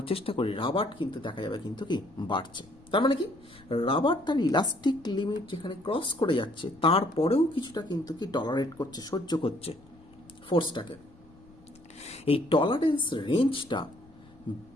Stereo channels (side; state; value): left; noise; rumble, 26 dB below the sound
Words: চেষ্টা করি, রাবার কিন্তু দেখা যাবে কিন্তু কি বাড়ছে। তার মানে কি, রাবার তার ইলাস্টিক লিমিট যেখানে ক্রস করে যাচ্ছে, তারপরেও কিছুটা কিন্তু কি টলারেট করছে, সহ্য করছে ফোর্সটাকে। এই টলারেন্স রেঞ্জটা